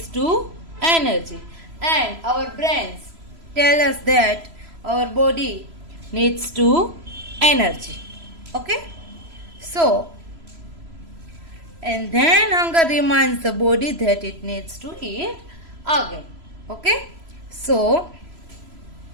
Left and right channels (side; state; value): left; late; 3.0 ms